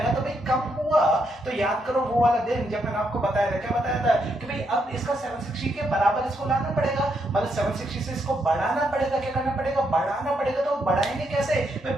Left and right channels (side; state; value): both; normal; correlation 0.78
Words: तो भाई कम हुआ तो याद करो वो वाला दिन जब मैंने आपको बताया था, क्या बताया था कि भाई अब इसका 760 के बराबर इसको लाना पड़ेगा, मतलब 760 से इसको बढ़ाना पड़ेगा। क्या करना पड़ेगा? बढ़ाना पड़ेगा। तो बढ़ाएंगे कैसे भाई?